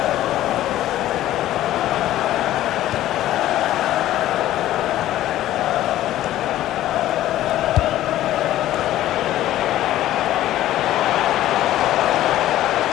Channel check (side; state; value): right; quieter; 13.8 dB